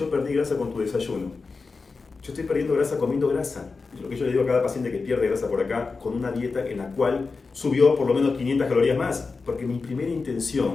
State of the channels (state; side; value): quieter; right; 4.3 dB